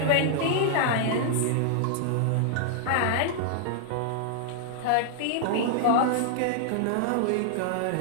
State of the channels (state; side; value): different; both; correlation -0.01